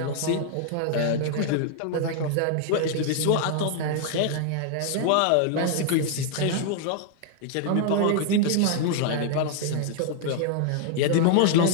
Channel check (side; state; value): both; different; correlation 0.00